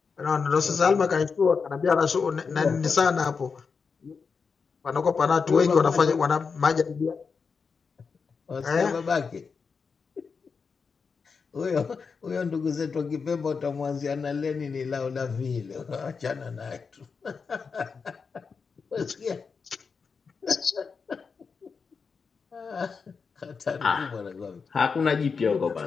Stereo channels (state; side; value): quieter; right; 5.3 dB